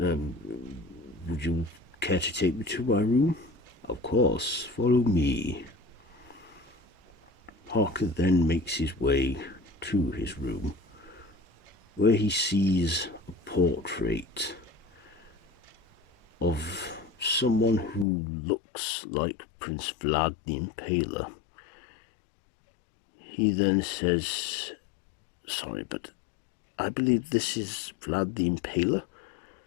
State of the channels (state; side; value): drops out; right; at 18.1 s